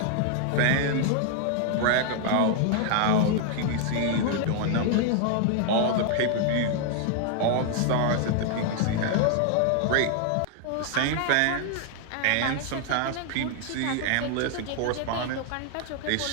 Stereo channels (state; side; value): different; both; correlation 0.00